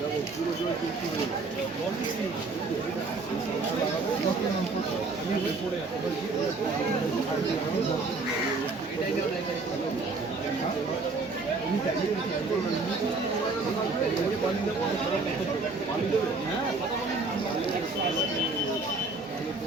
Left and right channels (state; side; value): quieter; left; 3.8 dB